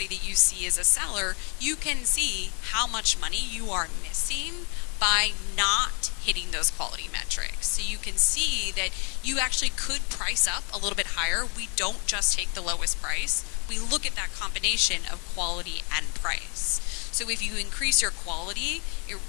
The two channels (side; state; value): right; quieter; 36.0 dB